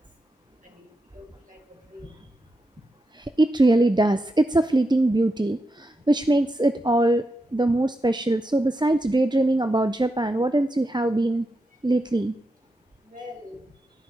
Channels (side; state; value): both; normal; correlation 0.86